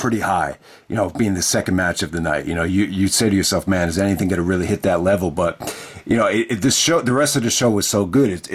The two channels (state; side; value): identical; both; correlation 1.00